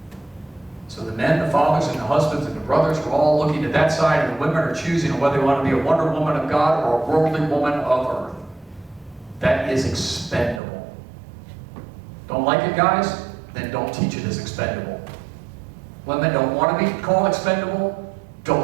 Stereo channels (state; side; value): drops out; left; at 10.6 s